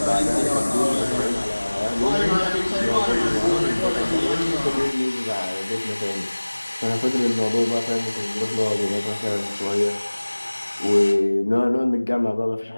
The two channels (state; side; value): inverted; both; correlation -1.00